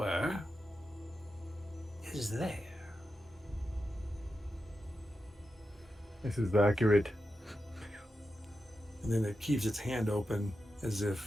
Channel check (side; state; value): both; normal; correlation 0.89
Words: is there." This is accurate. And then it keeps its hand open as